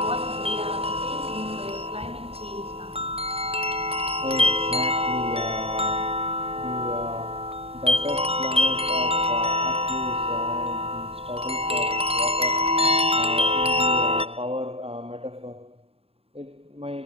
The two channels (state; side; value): late; left; 0.28 ms